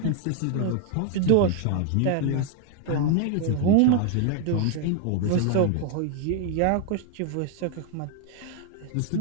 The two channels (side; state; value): both; different; correlation 0.00